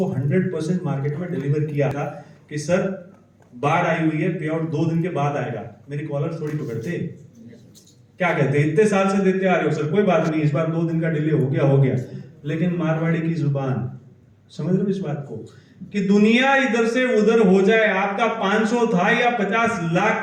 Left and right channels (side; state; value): both; identical; correlation 1.00